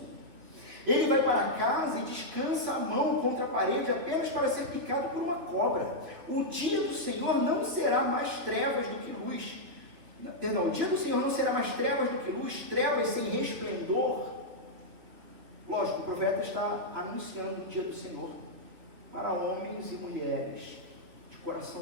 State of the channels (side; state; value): left; late; 3.2 ms